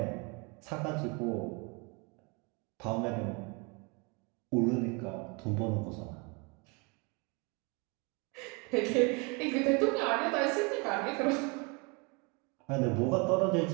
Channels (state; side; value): quieter; left; 30.5 dB